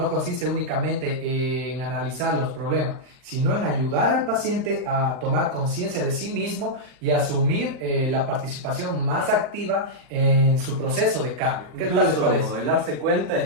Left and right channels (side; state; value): left; late; 39 ms